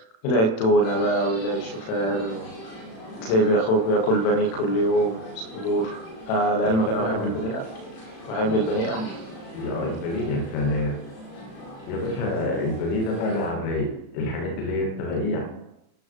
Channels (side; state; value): right; late; 36 ms